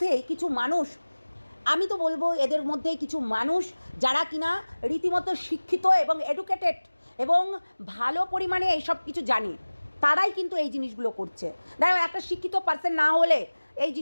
কিছু মানুষ, আমি তো বলবো এদের মধ্যে কিছু মানুষ যারা কিনা রীতিমতো শিক্ষিত এবং এডুকেটেড এবং ভালো পরিমাণে এইসব কিছু জানে, তারাই কিন্তু এই জিনিসগুলো করছে। দেখো একটা শিক্ষিত পার্সন না হলে এই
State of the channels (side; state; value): both; inverted; correlation -1.00